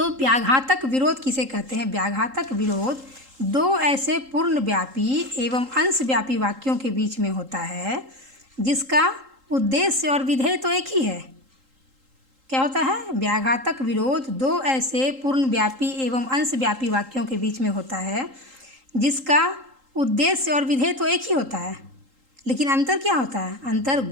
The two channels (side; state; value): left; late; 3.8 ms